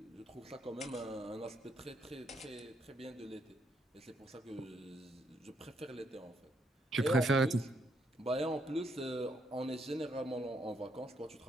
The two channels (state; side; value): normal; both; correlation 0.74